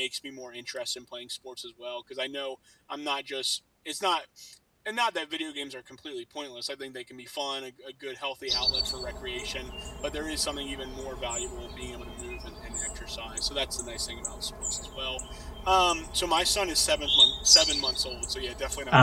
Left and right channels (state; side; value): identical; both; correlation 1.00